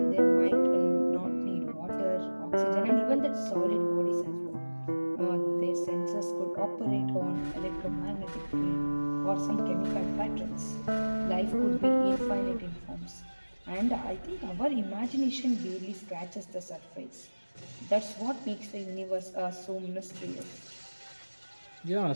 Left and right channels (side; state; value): both; inverted; correlation -1.00